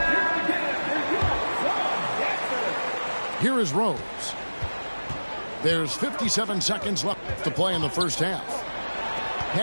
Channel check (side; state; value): both; inverted; correlation -1.00